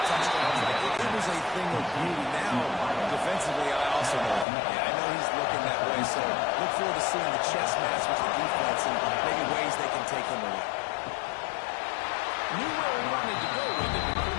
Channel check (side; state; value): right; drops out; at 4.5 s